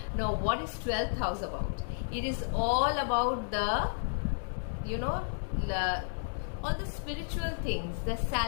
Now what is 12th house about? It is all about the, all the spiritual things, the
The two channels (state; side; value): silent; right; digital silence